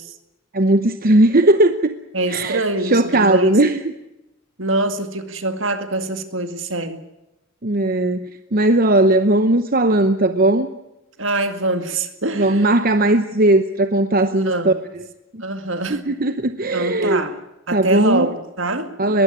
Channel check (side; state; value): both; normal; correlation 0.23